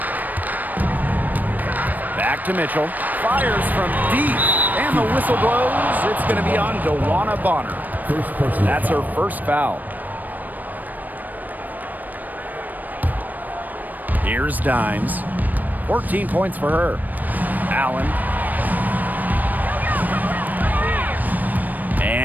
Back to Mitchell. Fires from deep. And the whistle blows. It's going to be on DeWanna Bonner. That's her first foul. Here's Dimes. 14 points for her. Allen.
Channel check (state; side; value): late; left; 0.085 ms